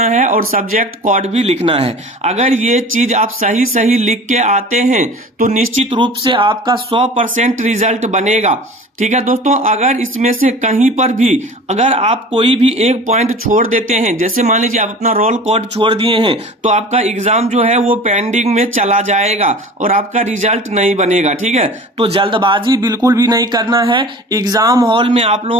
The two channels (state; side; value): normal; both; correlation 0.40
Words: है और सब्जेक्ट कोड भी लिखना है। अगर ये चीज आप सही लिख के आते हैं तो निश्चित रूप से आपका 100% रिजल्ट बनेगा। ठीक है दोस्तों, अगर इसमें से कहीं पर भी अगर आप कोई भी एक पॉइंट छोड़ देते हैं, जैसे मान लीजिए आप अपना रोल कोड छोड़ दिए हैं, तो आपका एग्जाम जो है वो पेंडिंग में चला जाएगा और आपका रिजल्ट नहीं बनेगा। ठीक है, तो जल्दबाजी बिल्कुल भी नहीं करना है। एग्जाम हॉल में आप